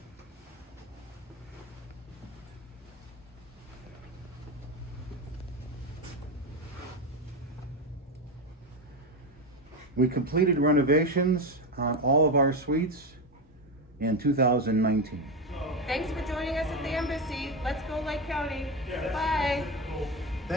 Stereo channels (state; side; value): normal; both; correlation 0.14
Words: We completed renovations on all of our suites in 2019. Thanks for joining us at the Embassy. Let's go Lake County. Bye.